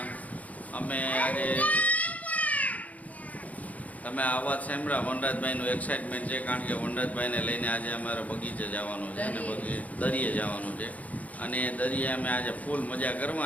અમે આજે તમે અવાજ સાંભળ્યા વનરાજભાઈનું એક્સાઇટમેન્ટ છે, કારણ કે વનરાજભાઈને લઈને આજે અમારે બગીચે જવાનું છે અને દરિયે જવાનું છે. અને દરિયે અમે આજે ફૂલ મજા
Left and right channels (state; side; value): late; right; 0.072 ms